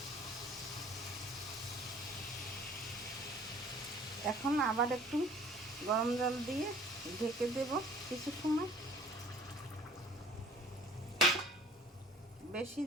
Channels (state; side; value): normal; both; correlation 0.52